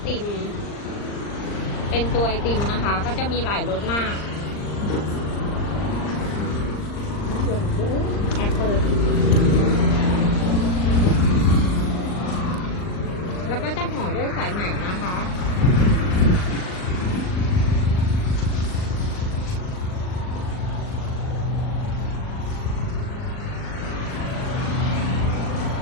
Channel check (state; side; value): late; right; 39 ms